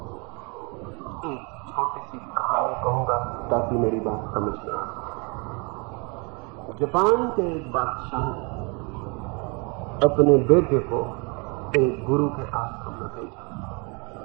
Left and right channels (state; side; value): quieter; left; 31.5 dB